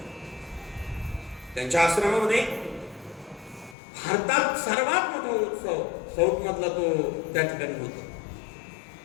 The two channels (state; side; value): drops out; right; at 3.8 s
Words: त्यांच्या आश्रमामध्ये भारतात सर्वात मोठा उत्सव साऊथ मधला तो त्या ठिकाणी होतो.